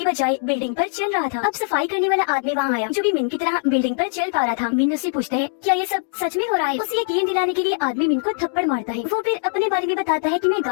बजाय बिल्डिंग पर चल रहा था। अब सफाई करने वाला आदमी वहाँ आया, जो भी मीन की तरह बिल्डिंग पर चल पा रहा था। मीन उससे पूछता है, क्या ये सब सच में हो रहा है? उसे यकीन दिलाने के लिए आदमी मीन को थप्पड़ मारता है। वो फिर अपने बारे में बताता है कि मैं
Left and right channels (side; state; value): right; silent; digital silence